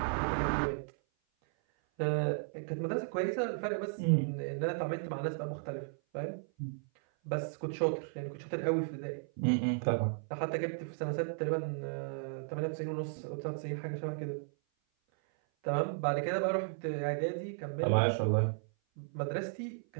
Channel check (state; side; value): silent; left; 55 dB below the other